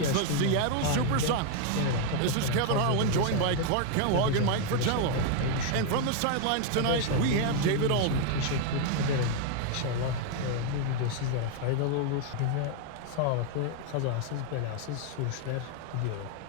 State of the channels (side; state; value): both; different; correlation 0.00